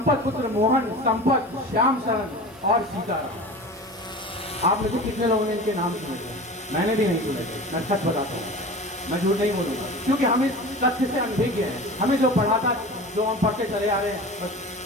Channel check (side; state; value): both; normal; correlation 0.34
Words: पुत्र मोहन, संपत, श्याम शरण और सीताराम। आप में से कितने लोगों ने इनके नाम सुने थे? मैंने भी नहीं सुने थे, मैं सच बताता हूँ, मैं झूठ नहीं बोलूंगा, क्योंकि हम इस तथ्य से अनभिज्ञ हैं। हमें जो पढ़ा था, जो हम पढ़ते चले आ रहे हैं, बस